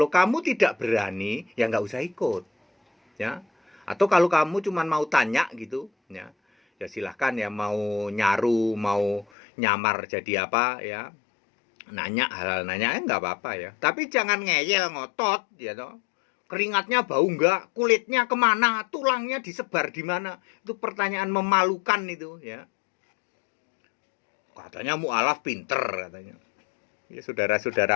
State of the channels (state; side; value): drops out; right; at 9.2 s